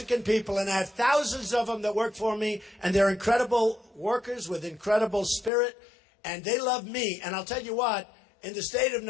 people, and I have thousands of them that work for me, and they're incredible workers with incredible spirit, and they love me. And I'll tell you what, in the state of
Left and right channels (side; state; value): right; drops out; at 5.5 s